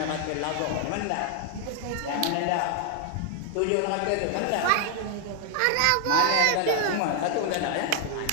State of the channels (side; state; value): both; different; correlation 0.00